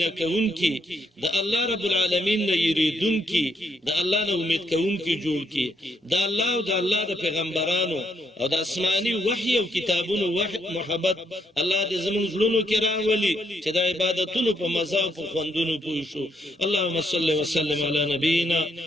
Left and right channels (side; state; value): both; normal; correlation 0.74